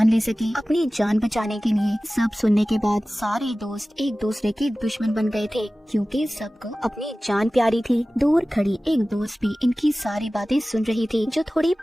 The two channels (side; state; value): both; normal; correlation 0.97